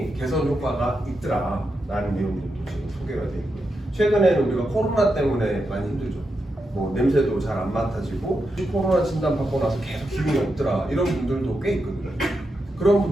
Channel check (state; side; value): normal; both; correlation 0.86